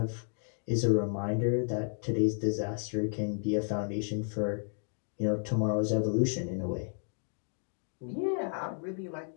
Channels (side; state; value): right; silent; 56 dB below the other